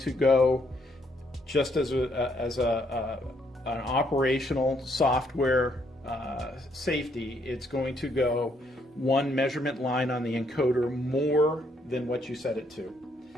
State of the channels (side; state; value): both; normal; correlation 0.72